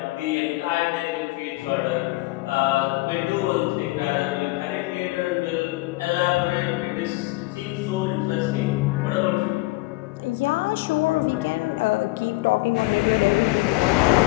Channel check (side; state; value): right; quieter; 21.1 dB